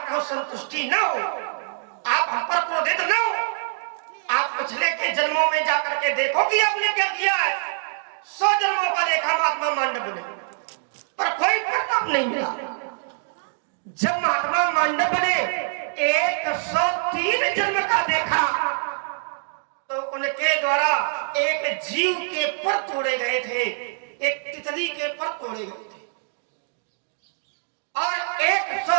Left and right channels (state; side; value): silent; left; digital silence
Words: संतुष्टि न हो, आप हम पर क्रोधित न हो, आप पिछले के जन्मों में जाकर के देखो कि आपने क्या किया है। 100 जन्मों का देखा महात्मा मांडव ने, पर कोई परिणाम नहीं मिला। जब महात्मा मांडव ने 103 जन्म का देखा, तो उनके द्वारा एक जीव के पर तोड़े गए थे, एक तितली के पर तोड़े गए थे। और